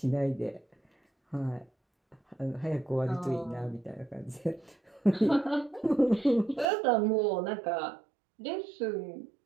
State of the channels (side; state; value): left; drops out; at 6.7 s